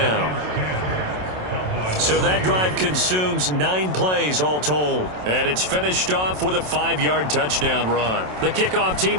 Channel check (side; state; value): left; late; 27 ms